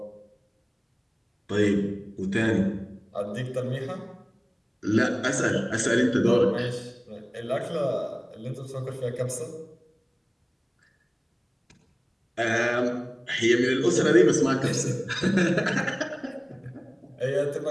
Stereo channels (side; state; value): both; identical; correlation 1.00